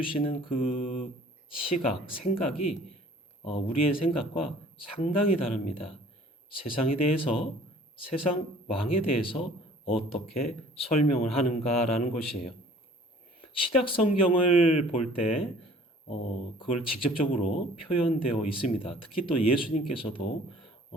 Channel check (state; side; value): normal; both; correlation 0.52